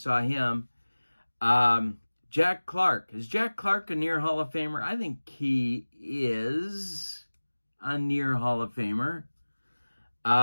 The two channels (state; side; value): inverted; both; correlation -1.00